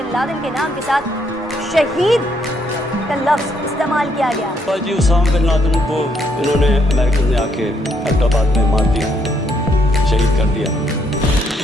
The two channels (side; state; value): both; normal; correlation 0.72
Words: लादेन के नाम के साथ शहीद का लफ्ज इस्तेमाल किया गया। जी उसामा बिन लादेन को इन्होंने अमेरिकन ने आके हैदराबाद में मार दिया, शहीद कर दिया।